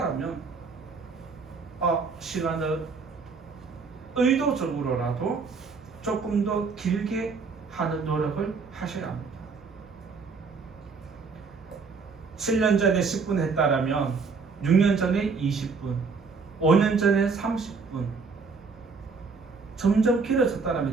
시간을 의도적으로라도 조금 더 길게 하는 노력을 하셔야 합니다. 7년 전에 10분 했다라면 6년 전에 20분, 5년 전에 30분 점점 길어졌다면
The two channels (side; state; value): left; quieter; 4.8 dB